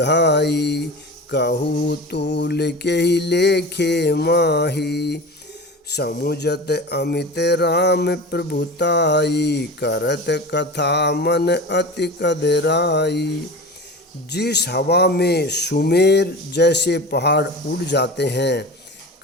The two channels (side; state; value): both; normal; correlation 0.32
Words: कहू तूल के ही लेखे माही। समुझत अमित राम प्रभुताई, करत कथा मन अति कदराई। जिस हवा में सुमेर जैसे पहाड़ उड़ जाते हैं,